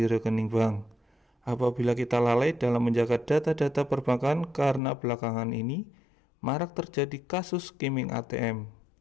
rekening bank. Apabila kita lalai dalam menjaga data-data perbankan, karena belakangan ini marak terjadi kasus skimming ATM.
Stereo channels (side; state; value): right; drops out; at 4.8 s